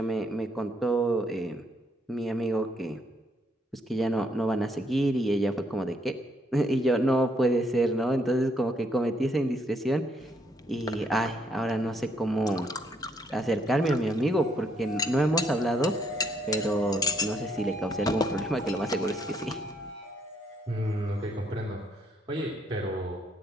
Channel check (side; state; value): both; normal; correlation 0.72